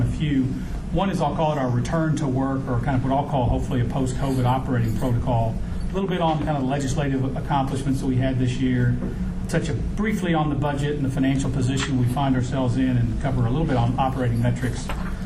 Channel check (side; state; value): both; identical; correlation 1.00